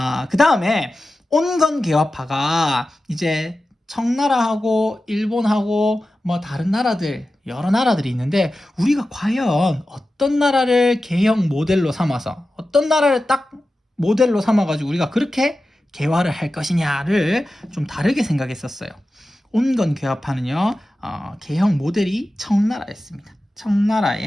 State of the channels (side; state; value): both; normal; correlation 0.94